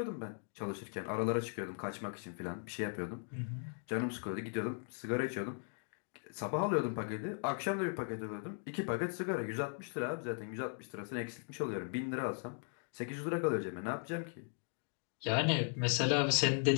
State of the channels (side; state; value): right; silent; 52 dB below the other